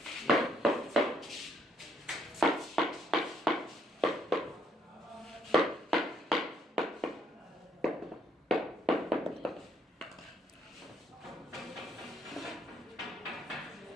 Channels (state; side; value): normal; both; correlation 0.70